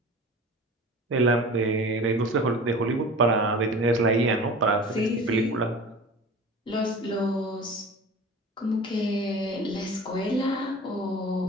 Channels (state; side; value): normal; both; correlation 0.38